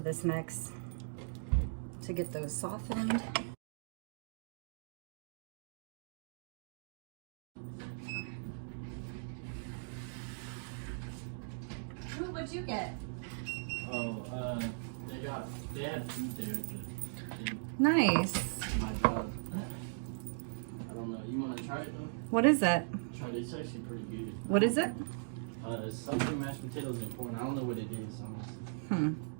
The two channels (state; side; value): silent; left; digital silence